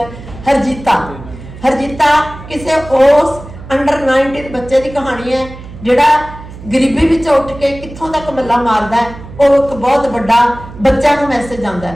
ਹਰਜੀਤਾ ਕਿਸੇ ਉਸ ਅੰਡਰ 19 ਬੱਚੇ ਦੀ ਕਹਾਣੀ ਹੈ ਜਿਹੜਾ ਗਰੀਬੀ ਵਿੱਚ ਉੱਠ ਕੇ ਕਿੱਥੋਂ ਤੱਕ ਮੱਲਾ ਮਾਰਦਾ ਹੈ। ਉਹ ਇੱਕ ਬਹੁਤ ਵੱਡਾ ਬੱਚਿਆਂ ਨੂੰ ਮੈਸੇਜ ਆਉਂਦਾ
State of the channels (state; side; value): noise; right; hum, 15 dB below the sound